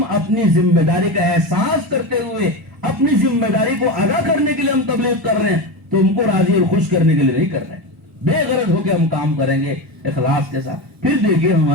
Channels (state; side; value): normal; both; correlation 0.20